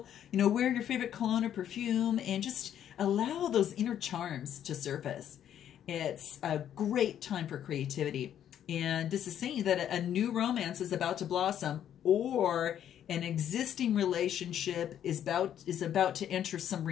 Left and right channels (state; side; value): quieter; right; 10.2 dB